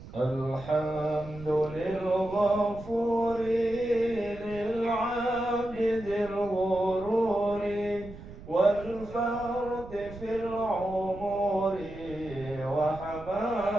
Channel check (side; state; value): right; noise; rumble, 15 dB below the sound